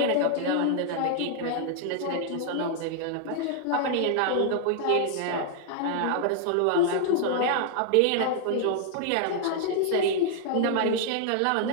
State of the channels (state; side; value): different; both; correlation 0.00